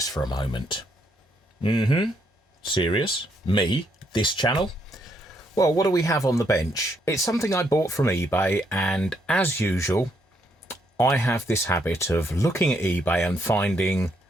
for a moment. Serious? Me? This channel? Well, what do we have on the bench? It's something I bought from eBay, and as usual, I have this habit of looking at eBay and finding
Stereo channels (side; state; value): both; normal; correlation 0.74